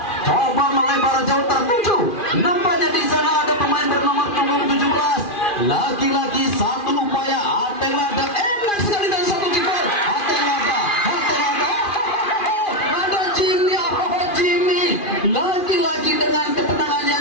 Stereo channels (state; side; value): late; right; 2.4 ms